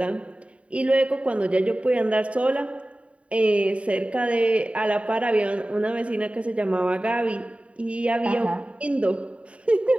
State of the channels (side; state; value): left; late; 0.063 ms